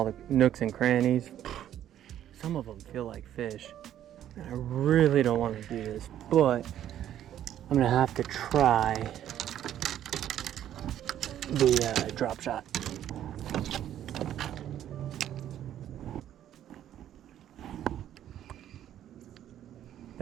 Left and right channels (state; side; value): quieter; left; 11.2 dB